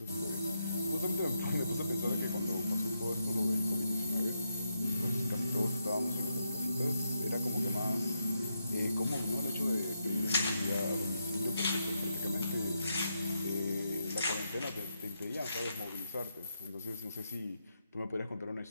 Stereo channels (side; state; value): both; inverted; correlation -0.83